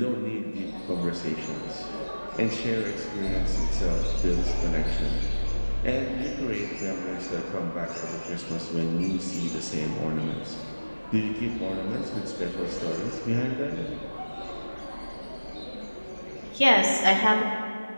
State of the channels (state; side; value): inverted; both; correlation -1.00